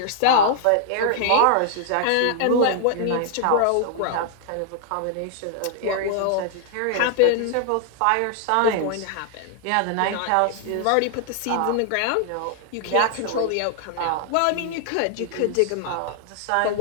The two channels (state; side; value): different; both; correlation 0.00